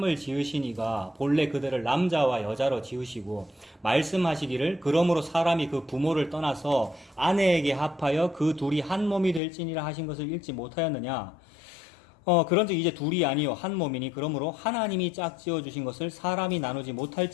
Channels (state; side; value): drops out; right; at 9.4 s